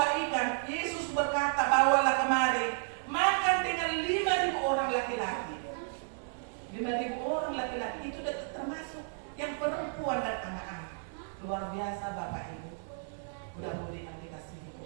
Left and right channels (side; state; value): left; silent; digital silence